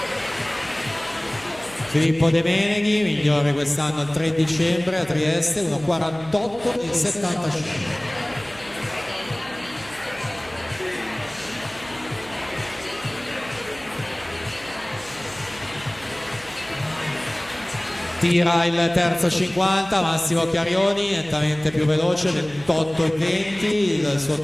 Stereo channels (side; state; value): right; noise; hum, 21 dB below the sound